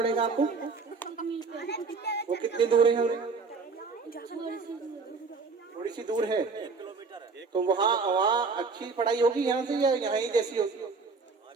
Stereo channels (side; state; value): left; quieter; 4.5 dB